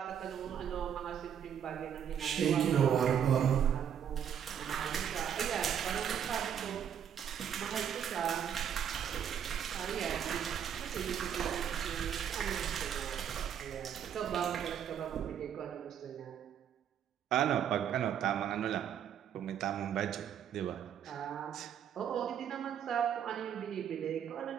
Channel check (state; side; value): quieter; left; 8.8 dB